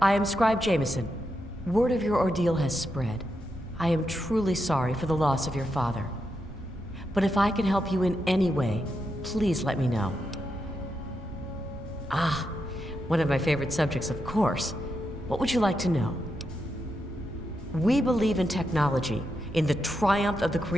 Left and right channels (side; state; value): both; normal; correlation 0.85